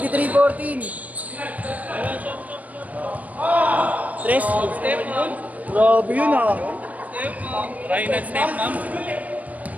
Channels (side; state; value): left; late; 0.072 ms